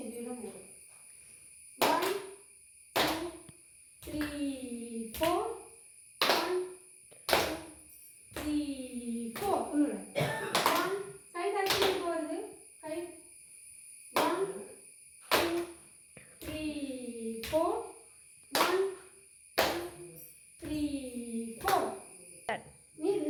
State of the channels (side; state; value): both; identical; correlation 1.00